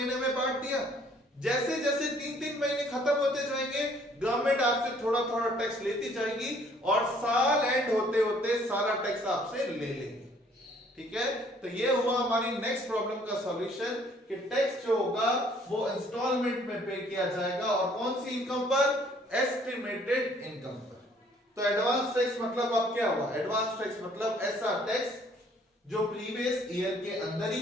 में बांट दिया। जैसे जैसे 3-3 महीने खत्म होते जाएंगे, गवर्नमेंट आपसे थोड़ा थोड़ा टैक्स लेती जाएगी और साल एंड होते होते सारा टैक्स आपसे ले लेंगे। ठीक है, तो ये हुआ हमारी नेक्स्ट प्रॉब्लम का सॉल्यूशन कि टैक्स जो होगा वो इंस्टॉलमेंट में पे किया जाएगा, और कौन सी इनकम पर, एस्टिमेटेड इनकम पर। तो एडवांस टैक्स मतलब अब क्या हुआ, एडवांस टैक्स मतलब ऐसा टैक्स जो प्रीवियस ईयर के अंदर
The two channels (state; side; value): normal; both; correlation 0.60